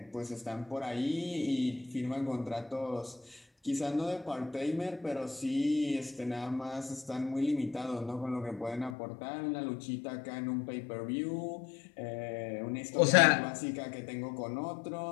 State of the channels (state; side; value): drops out; right; at 9.0 s